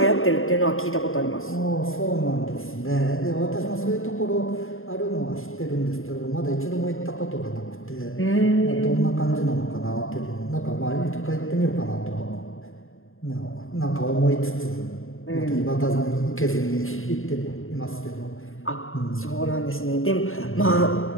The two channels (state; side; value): late; right; 0.60 ms